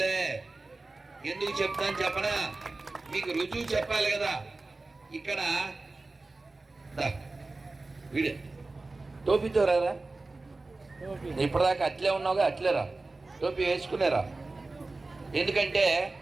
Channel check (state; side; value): quieter; left; 3.3 dB